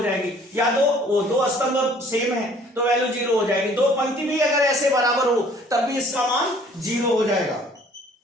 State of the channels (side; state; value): both; normal; correlation 0.56